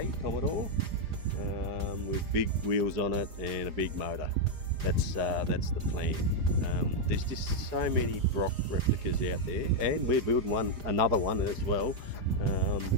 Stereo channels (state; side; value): late; left; 4.9 ms